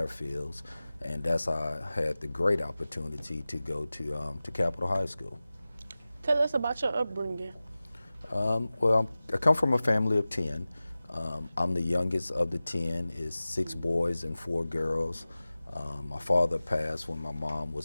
and that's how I had the great opportunity to go to Capitol High School. Tell us about your upbringing. I come from a family of 10. I'm the youngest of the 10. It's 6 boys and 4 girls. My father passed when my mom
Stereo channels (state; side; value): inverted; both; correlation -0.97